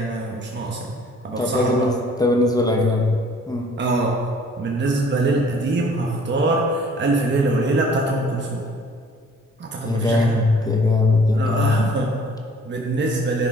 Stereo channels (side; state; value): both; normal; correlation 0.54